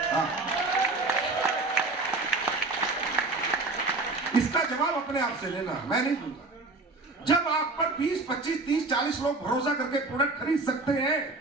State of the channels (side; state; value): left; quieter; 3.4 dB